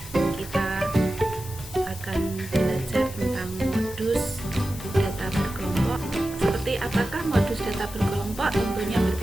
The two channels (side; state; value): left; noise; hiss, 15 dB below the sound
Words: Kita akan belajar tentang modus data berkelompok. Seperti apakah modus data berkelompok? Tentunya